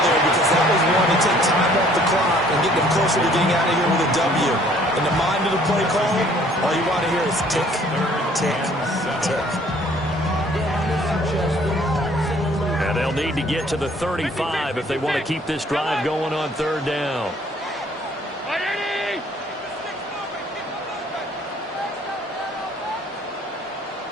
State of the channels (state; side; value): normal; both; correlation 0.58